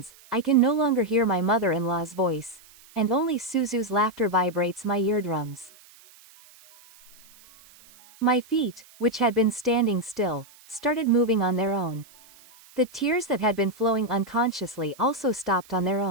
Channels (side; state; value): right; noise; hiss, 25 dB below the sound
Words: I can no longer hear my mother-in-law's voice, and only Suzu's laughter vibrates my eardrums. My feet, which had been standing still, started moving on their own. The tears that had been flowing unconsciously also stopped on their